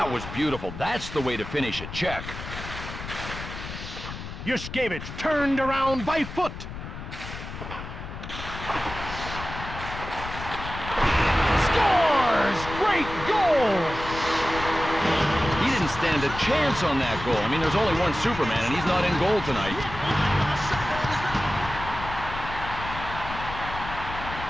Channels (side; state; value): left; noise; rumble, 10 dB below the sound